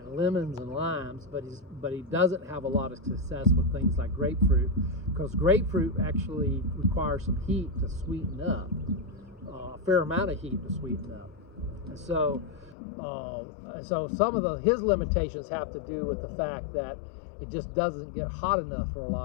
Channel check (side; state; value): right; drops out; at 12.8 s